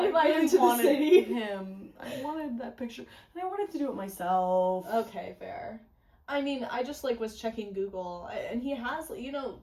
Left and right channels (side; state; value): both; identical; correlation 1.00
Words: him to the city. I wanted that picture, and I wanted to do it myself. Okay, fair. I mean, I just was checking Google, and he has,